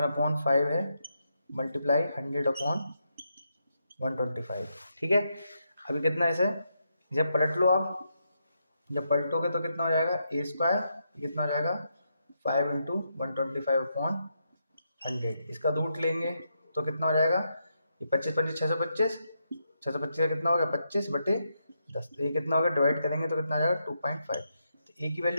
है मल्टीप्लाई 100/125। ठीक है, अभी कितना है इसे, जब पलट लो आप, जब पलटोगे तो कितना हो जाएगा a², ये कितना हो जाएगा 5 × 125/100, इसका रूट लेंगे तो कितना हो जाएगा, ये 25 25 625, 625 का कितना हो गया 25/10, तो ये कितना हो गया, डिवाइड करेंगे तो कितना आ जाएगा 2.5, तो ए की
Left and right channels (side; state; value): both; inverted; correlation -0.82